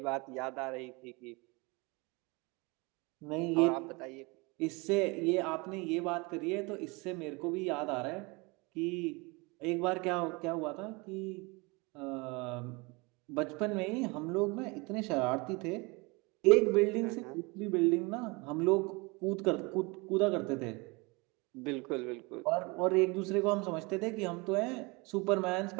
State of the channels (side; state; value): left; quieter; 27.0 dB